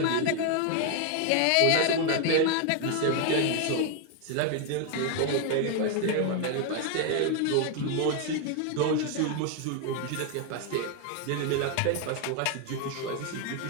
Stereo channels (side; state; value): both; different; correlation 0.01